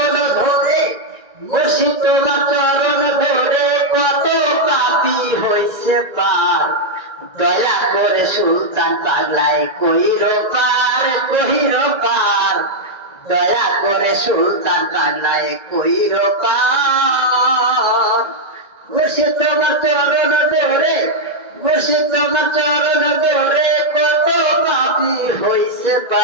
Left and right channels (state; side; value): late; left; 2.0 ms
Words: ধরে, মুর্শিদ তোমার চরণ ধরে কত পাপী হইছে পার। দয়া করে সুলতান পাগলায় কইরো পার, কইরো পার। দয়া করে সুলতান পাগলায় কইরো পার। মুর্শিদ তোমার চরণ ধরে, মুর্শিদ তোমার চরণ ধরে কত পাপী হইছে